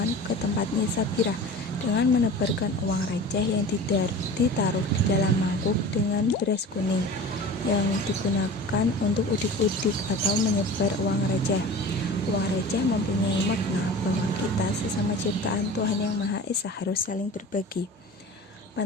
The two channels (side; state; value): both; normal; correlation 0.37